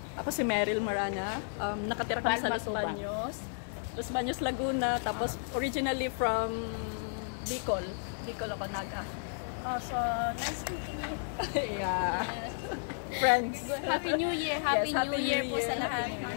Ako si Meryl Marana. Nakatira kami sa Los Baños. Los Baños, Laguna. Tapos originally from Bicol. Bicol ako naga. Oh, so nice meeting you. Yeah. Friends. Happy New Year. Happy Yes, Happy New Year New po sa Year. lahat. Happy New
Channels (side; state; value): right; silent; digital silence